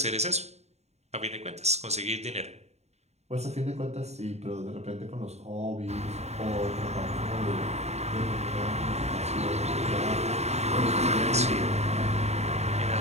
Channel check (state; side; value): late; left; 0.32 ms